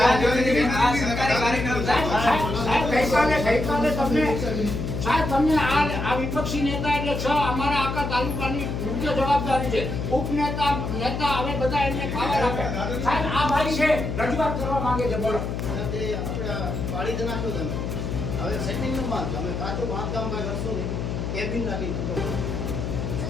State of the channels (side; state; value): left; noise; hum, 3 dB below the sound